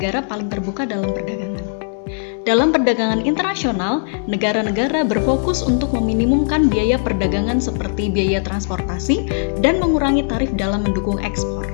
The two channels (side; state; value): right; silent; 63 dB below the other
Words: paling terbuka dalam perdagangan. Dalam perdagangan internasional, negara-negara berfokus untuk meminimumkan biaya perdagangan seperti biaya transportasi dan mengurangi tarif dalam mendukung ekspor.